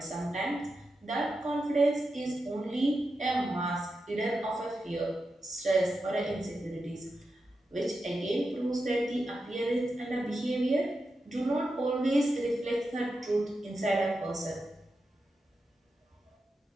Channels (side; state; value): both; normal; correlation 0.89